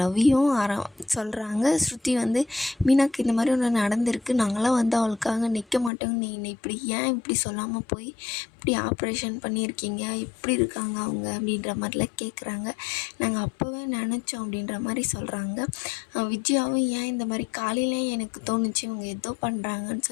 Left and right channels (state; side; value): drops out; right; at 5.9 s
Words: ரவியும் சொல்கிறாங்க. ஸ்ருதி வந்து, மீனாக்கு இந்த மாதிரி ஒன்று நடந்திருக்கு, நாங்களாம் வந்து அவளுக்காக நிற்க மாட்டோங்க, நீ இப்படி ஏன் இப்படி சொல்லாமல் போய் இப்படி ஆப்ரேஷன் பண்ணியிருக்கீங்க, இப்படி இருக்காங்க அவங்க அப்படின்ற மாதிரிலாம் கேட்குறாங்க. நாங்கள் அப்போவே நினச்சோம் அப்படின்ற மாதிரி சொல்கிறாங்க. விஜயாவும் ஏன் இந்த மாதிரி காலையிலே எனக்கு தோணுச்சு இவங்க ஏதோ பண்ணுறாங்கன்னு